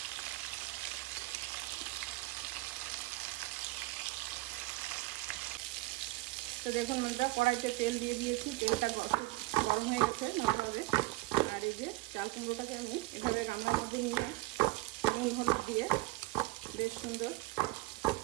তো দেখুন বন্ধুরা, কড়াইতে তেল দিয়ে দিয়েছি, তেলটা গরম হয়ে গেছে ভালোভাবে। আর এই যে চাল কুমড়োটাকে আমি এভাবে গামলার মধ্যে নিলাম, নুন হলুদ দিয়ে বেশ সুন্দর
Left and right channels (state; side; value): quieter; left; 20.9 dB